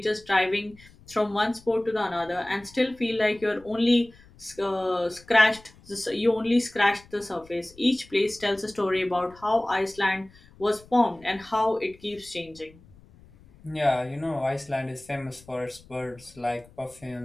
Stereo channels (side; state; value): left; noise; rumble, 25 dB below the sound